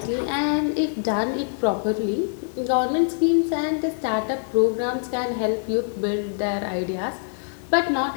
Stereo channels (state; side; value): silent; right; digital silence